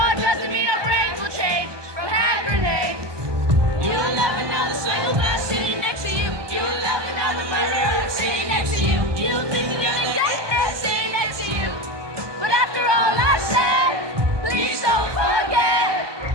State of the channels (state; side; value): late; left; 1.2 ms